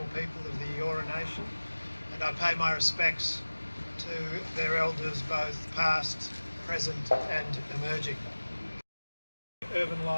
people of the Eora Nation, and I pay my respects to their elders both past, present and emerging. Urban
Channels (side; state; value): both; inverted; correlation -1.00